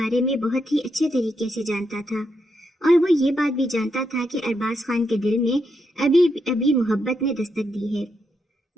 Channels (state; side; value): normal; both; correlation 0.81